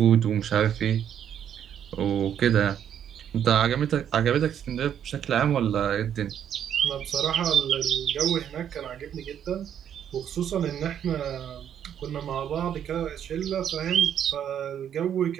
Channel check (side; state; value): left; quieter; 9.4 dB